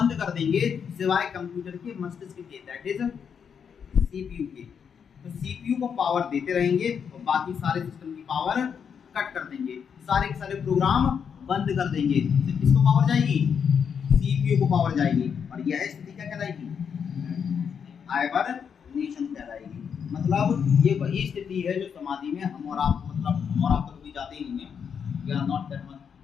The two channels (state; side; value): quieter; right; 7.1 dB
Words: कर देंगे सिवाय कंप्यूटर के मस्तिष्क के, दैट इज सीपीयू के। तो सीपीयू को पावर देते रहेंगे और बाकी सारे सिस्टम की पावर कट कर देंगे, सारे के सारे प्रोग्राम बंद कर देंगे। तो किसको पावर जाएगी? सीपीयू को पावर जाएगी। और यह स्थिति क्या कहलाएगी? हाइबरनेशन कहलाएगी। मतलब ये वही स्थिति है जो समाधि में हम और आप, मतलब हम और आप तो कभी जाते ही नहीं है, we are not that much,